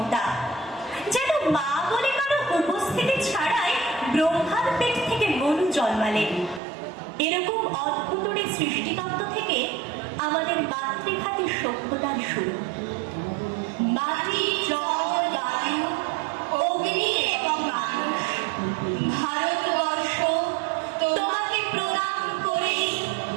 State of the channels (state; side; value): drops out; left; at 6.6 s